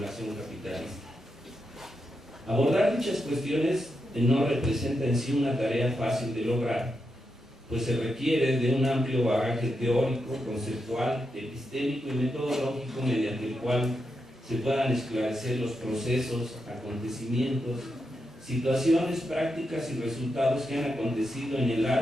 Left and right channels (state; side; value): normal; both; correlation 0.85